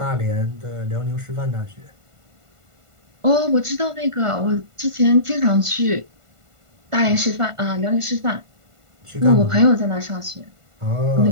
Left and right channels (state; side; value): late; left; 1.5 ms